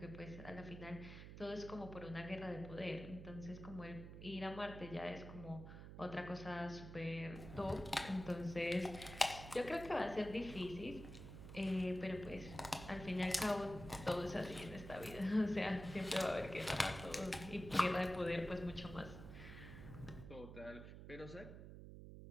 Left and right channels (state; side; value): noise; right; hum, 11 dB below the sound